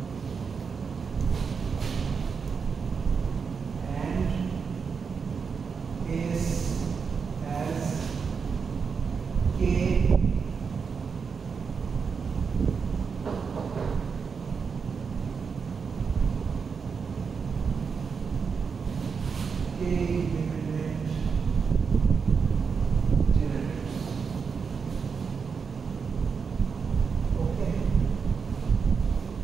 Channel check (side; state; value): left; quieter; 5.7 dB